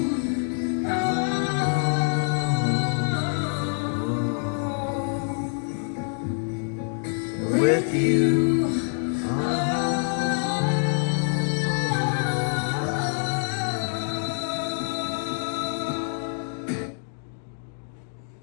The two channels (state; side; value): silent; right; 61 dB below the other